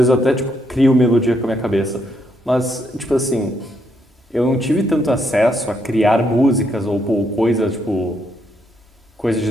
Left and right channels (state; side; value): normal; both; correlation 0.75